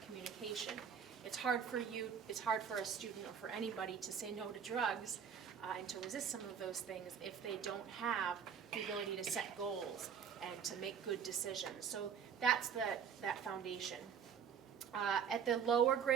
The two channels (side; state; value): left; quieter; 7.5 dB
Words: communication. It's hard for a student or for anybody to say no to drugs and to resist some of those things if they don't have the ability to set goals and to make good decisions. So that's that foundation. At the lower